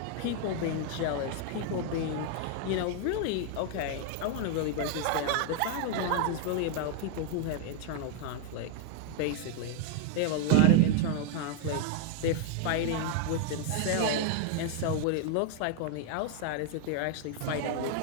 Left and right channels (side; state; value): both; different; correlation 0.00